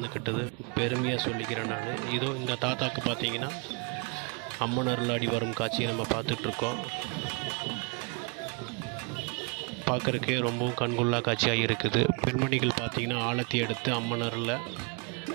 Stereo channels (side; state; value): left; quieter; 34.6 dB